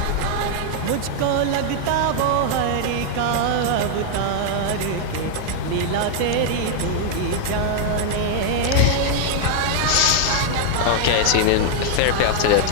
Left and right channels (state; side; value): different; both; correlation 0.00